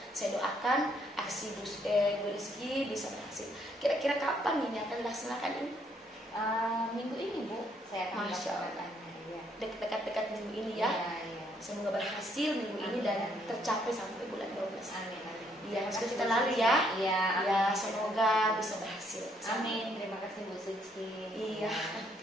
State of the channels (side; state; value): both; normal; correlation 0.70